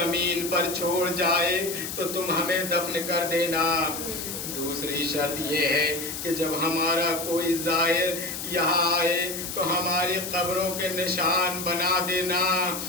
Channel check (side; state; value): left; noise; hiss, 6 dB below the sound